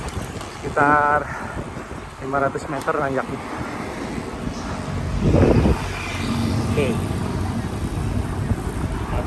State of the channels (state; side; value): identical; both; correlation 1.00